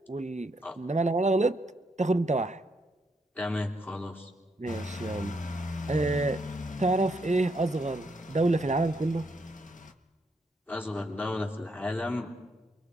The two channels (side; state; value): both; normal; correlation 0.76